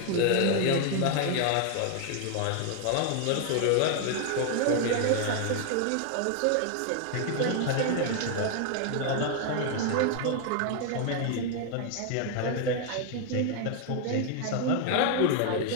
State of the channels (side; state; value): both; different; correlation 0.00